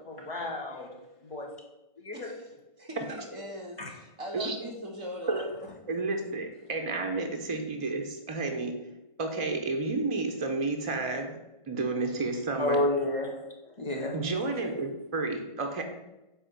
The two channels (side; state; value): left; late; 1.5 ms